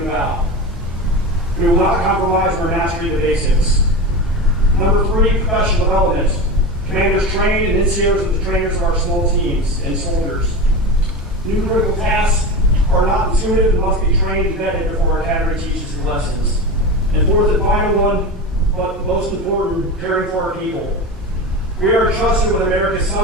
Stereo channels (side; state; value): both; normal; correlation 0.25